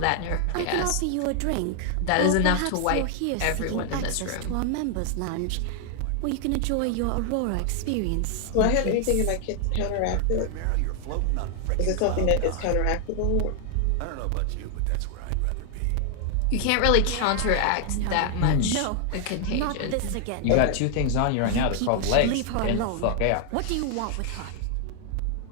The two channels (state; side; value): different; both; correlation 0.00